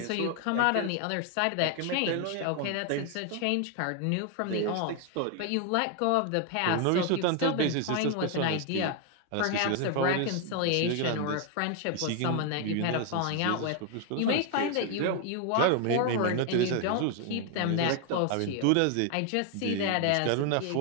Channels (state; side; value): different; both; correlation 0.01